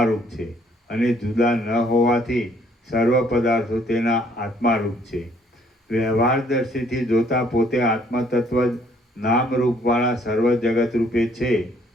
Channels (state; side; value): normal; both; correlation 0.64